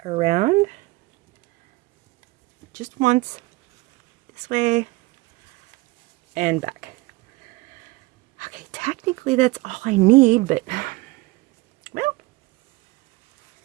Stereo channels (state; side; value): quieter; left; 21.7 dB